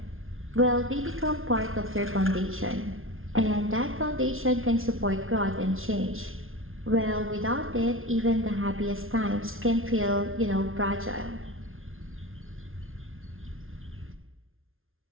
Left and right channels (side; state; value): left; late; 0.60 ms